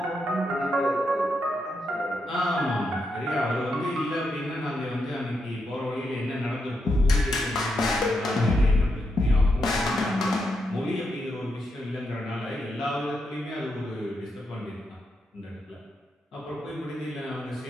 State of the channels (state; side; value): normal; both; correlation 0.83